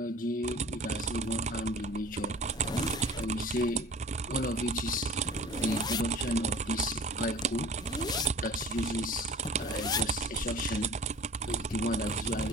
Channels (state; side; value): normal; both; correlation 0.42